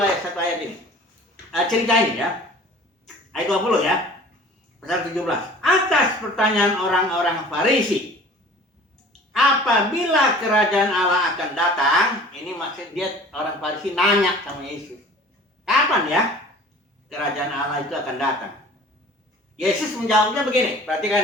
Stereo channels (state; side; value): normal; both; correlation 0.46